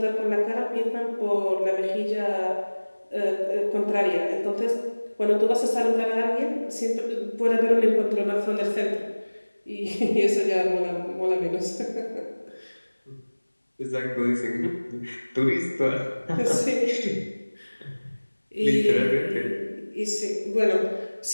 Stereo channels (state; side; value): inverted; both; correlation -1.00